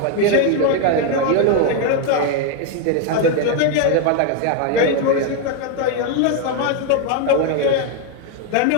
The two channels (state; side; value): different; both; correlation 0.01